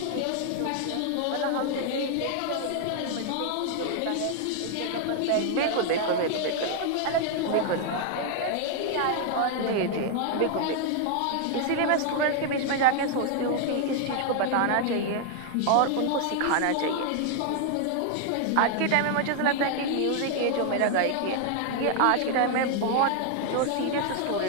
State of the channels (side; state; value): both; different; correlation 0.00